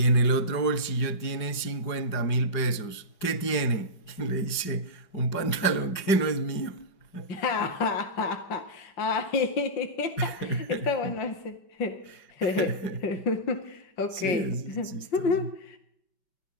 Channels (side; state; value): right; late; 4.9 ms